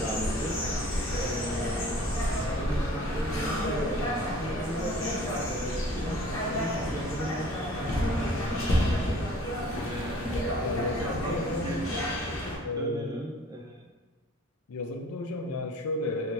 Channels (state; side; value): normal; both; correlation 0.50